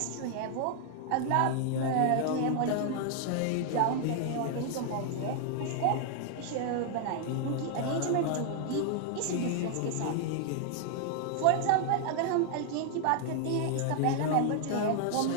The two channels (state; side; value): different; both; correlation 0.00